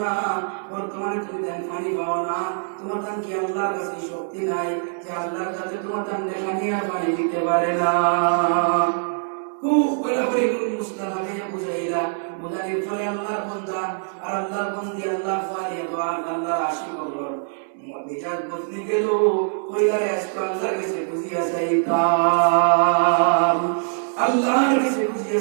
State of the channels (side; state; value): left; silent; 63 dB below the other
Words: না, বর্তমানে তুমি দেন পানি পাও না, তোমার তান কি আল্লাহর কাছে শক্তি নাই যে আল্লাহর কাছে তোমার তান দেখা নিয়ে পানি দিতে পারে না। খুব বরাবরই মুস্তাহাবে বুঝাইলা, বুঝাইলে পরে আল্লাহর বান্দা আর আল্লাহর বান্দি আল্লাহ পারে দোয়া আল্লাহর আশিক হলো মেজাজ বদলে গেল, কইলারে আজকে আল্লাহর কাছে বুঝিয়া চাইতাম, আল্লাহর কাছে বুঝিয়া